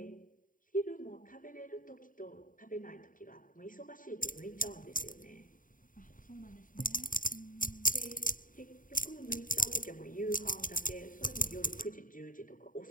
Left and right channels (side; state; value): right; late; 0.39 ms